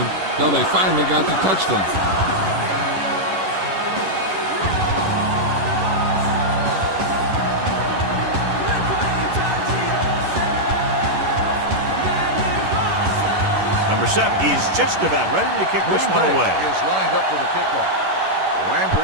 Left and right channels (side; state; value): left; late; 11 ms